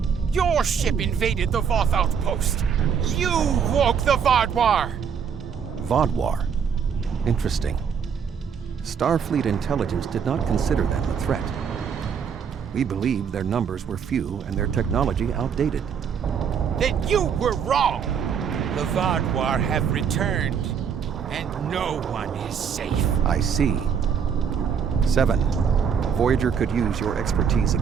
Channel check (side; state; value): left; quieter; 7.1 dB